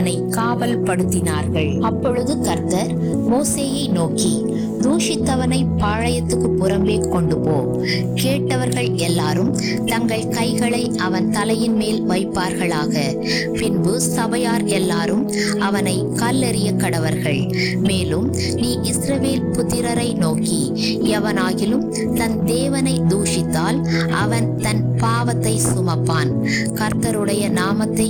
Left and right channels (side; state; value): both; identical; correlation 1.00